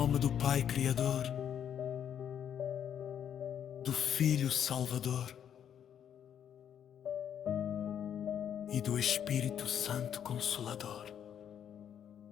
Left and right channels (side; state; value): right; quieter; 9.0 dB